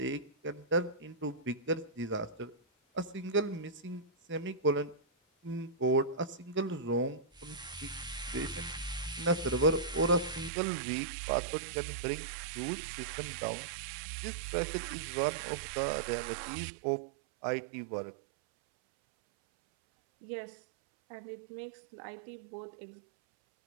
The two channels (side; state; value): left; drops out; at 10.5 s